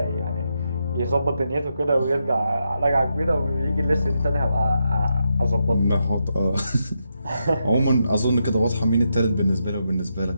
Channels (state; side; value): inverted; both; correlation -0.83